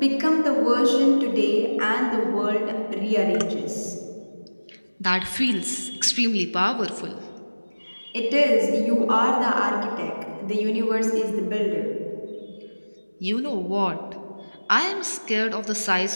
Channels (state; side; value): inverted; both; correlation -1.00